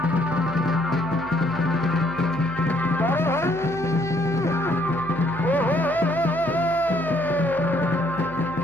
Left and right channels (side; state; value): left; noise; hum, 20 dB below the sound